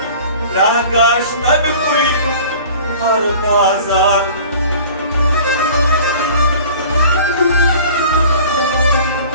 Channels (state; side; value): inverted; both; correlation -0.45